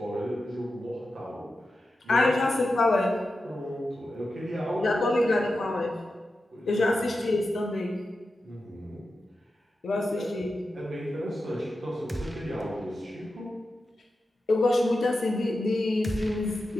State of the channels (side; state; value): both; normal; correlation 0.91